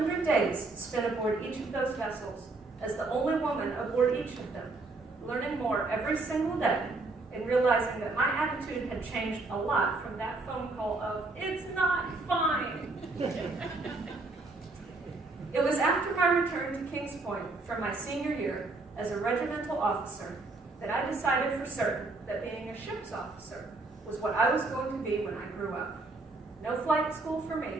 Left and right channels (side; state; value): left; quieter; 3.4 dB